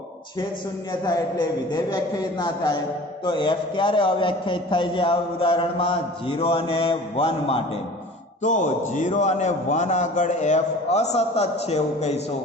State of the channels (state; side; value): normal; both; correlation 0.43